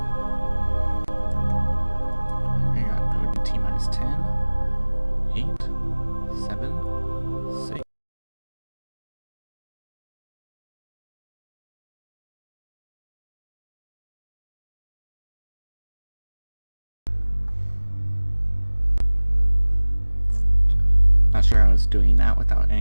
We got node in T-minus 10, 8, 7, 6. Not sure how it's doing that without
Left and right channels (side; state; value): both; inverted; correlation -1.00